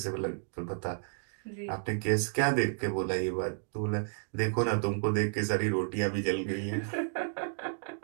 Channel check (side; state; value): left; silent; digital silence